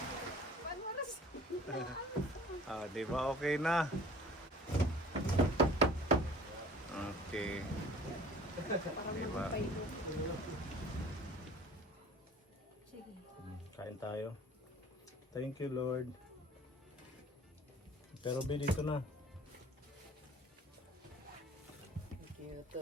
Ah, di ba okay na? Okay. Di ba? Kain tayo. Thank you, Lord. Pero be dito na.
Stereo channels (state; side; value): normal; both; correlation 0.48